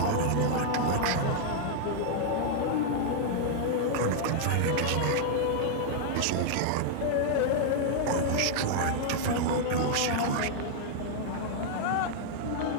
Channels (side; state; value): both; different; correlation -0.01